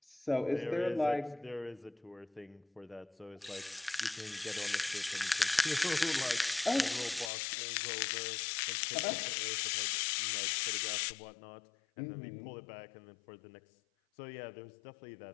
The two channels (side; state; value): right; drops out; at 7.3 s